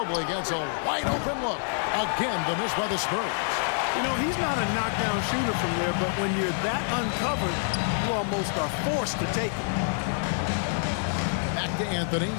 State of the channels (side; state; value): right; silent; 60 dB below the other